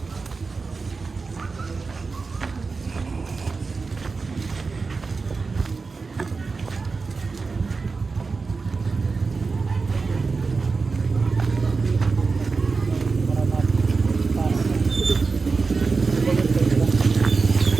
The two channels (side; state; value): left; quieter; 4.4 dB